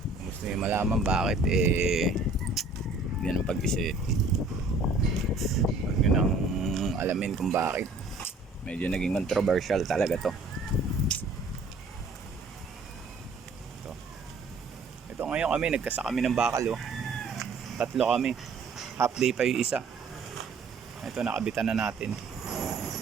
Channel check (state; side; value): quieter; left; 3.4 dB